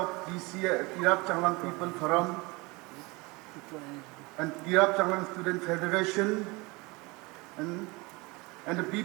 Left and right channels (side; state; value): left; quieter; 25.1 dB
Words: Tirap Changlang People Forum and Tirap Changlang Student Federation and the